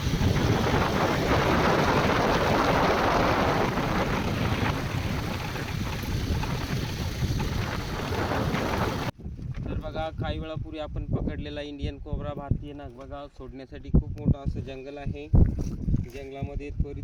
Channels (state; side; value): identical; both; correlation 1.00